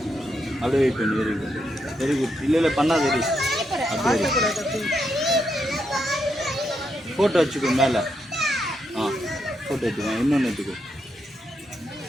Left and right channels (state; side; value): normal; both; correlation 0.81